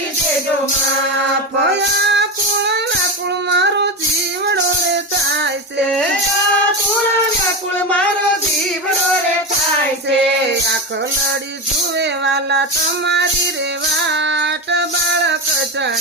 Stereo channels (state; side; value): normal; both; correlation 0.19